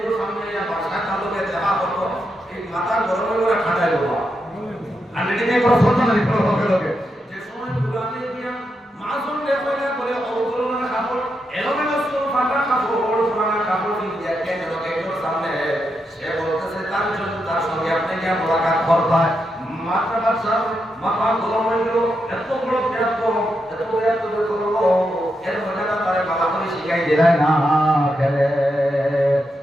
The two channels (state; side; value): normal; both; correlation 0.84